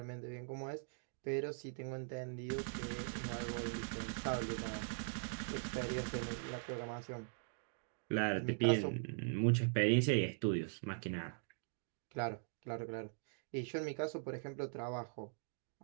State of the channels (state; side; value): silent; left; digital silence